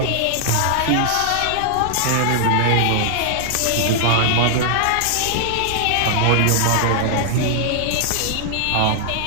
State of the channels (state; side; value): different; both; correlation 0.00